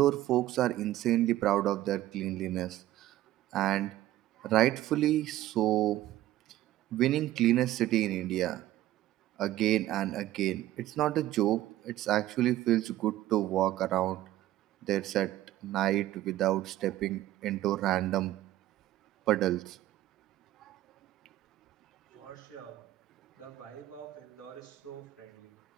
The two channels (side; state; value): left; quieter; 14.6 dB